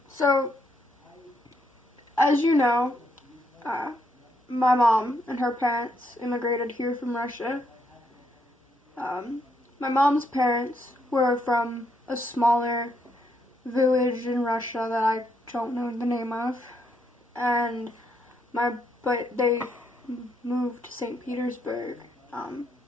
so, as you know, my mom and her parents immigrated here from Russia. My mom's parents were from a smaller village in Russia that I don't know the name of, and but they moved to St. Petersburg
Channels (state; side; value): normal; both; correlation 0.75